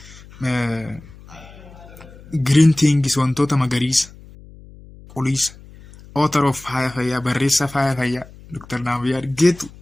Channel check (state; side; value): noise; left; hum, 20 dB below the sound